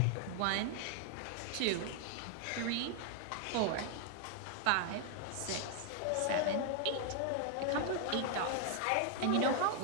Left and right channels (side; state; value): both; different; correlation 0.00